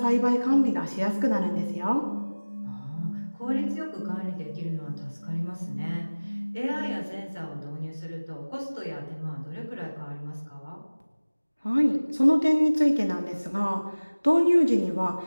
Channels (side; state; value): both; inverted; correlation -1.00